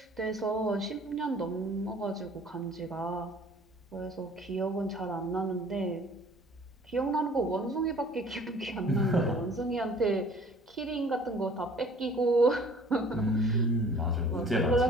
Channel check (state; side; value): normal; both; correlation 0.52